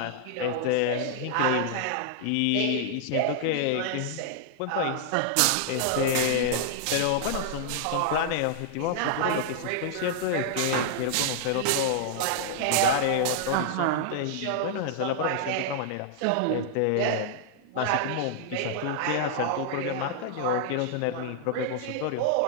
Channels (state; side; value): different; both; correlation -0.01